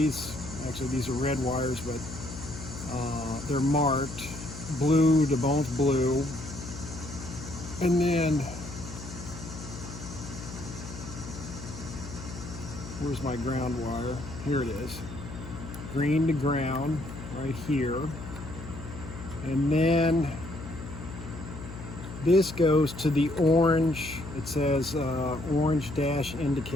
are red wires, but they're marked blue to both blue. And then, where's my ground wire? Here it is. Green to ground, right here. And then this goes to the orange, it says orange dash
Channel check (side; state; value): left; noise; hum, 11 dB below the sound